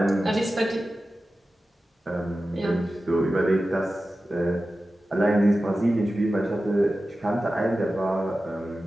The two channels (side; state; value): both; normal; correlation 0.94